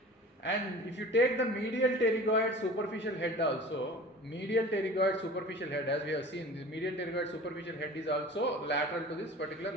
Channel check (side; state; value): both; normal; correlation 0.40